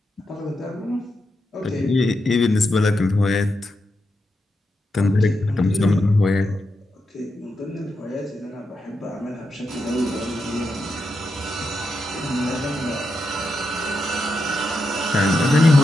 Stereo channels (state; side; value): normal; both; correlation 0.85